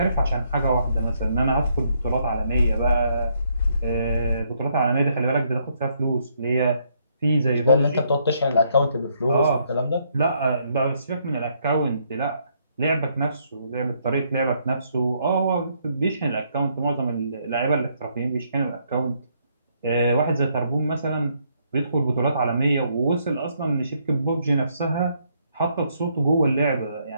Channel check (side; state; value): both; inverted; correlation -0.72